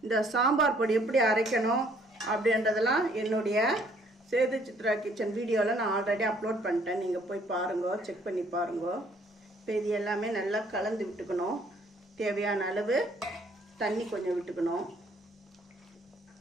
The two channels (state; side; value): normal; both; correlation 0.62